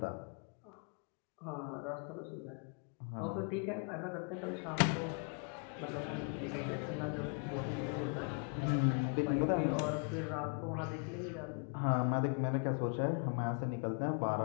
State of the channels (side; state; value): right; quieter; 39.8 dB